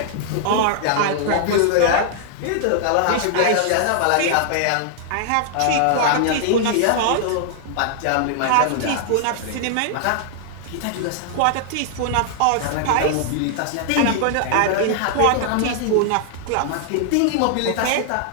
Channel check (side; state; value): both; different; correlation -0.01